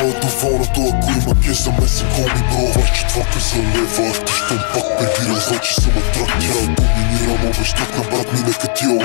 доволното, ако има кеш за месен коми бро. 24-ка за лева, ти щом пак прибирал, значи съм атрак. Тя доминирам, обещах на брат ми, нека тия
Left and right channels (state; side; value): silent; right; digital silence